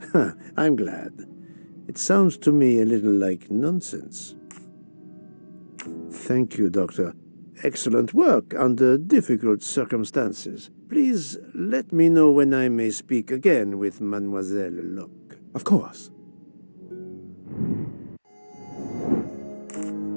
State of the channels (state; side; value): inverted; both; correlation -1.00